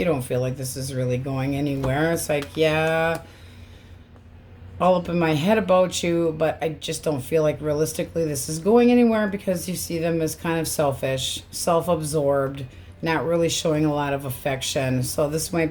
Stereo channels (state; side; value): identical; both; correlation 1.00